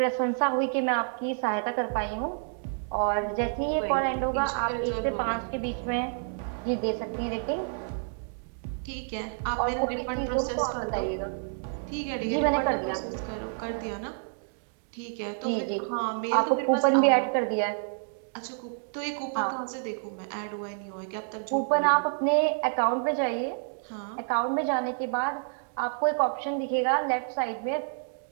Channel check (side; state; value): left; silent; digital silence